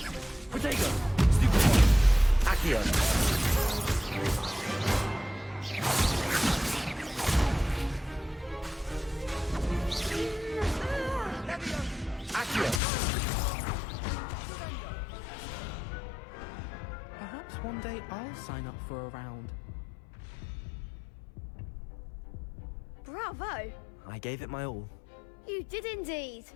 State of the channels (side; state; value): right; drops out; at 12.8 s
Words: Protego. Accio. Accio. Perhaps one day I'll sign up for a round. Bravo! I gave it my all. You did indeed.